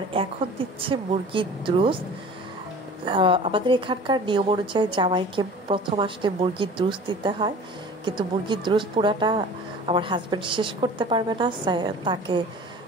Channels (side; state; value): both; normal; correlation 0.42